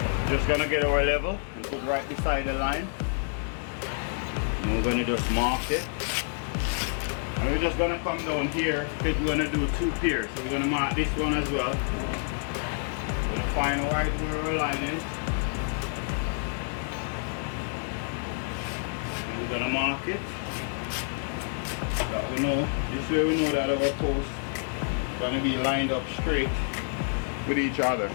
Just gonna get our level and put right beside the line. And we're gonna just mark it. And we're just gonna come down here because we're gonna do two piers. So we're gonna mark this one as well. We're gonna find right where our line is. And we're gonna mark it. That we know. This way we know that our posts are gonna be lined up straight with each other.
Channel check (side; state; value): right; silent; 55 dB below the other